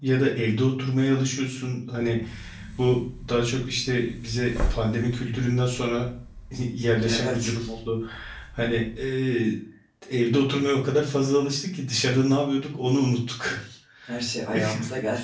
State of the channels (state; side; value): identical; both; correlation 1.00